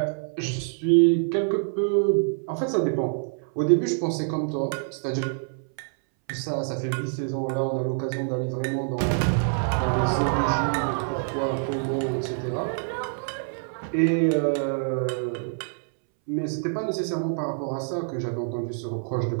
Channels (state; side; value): silent; left; 61 dB below the other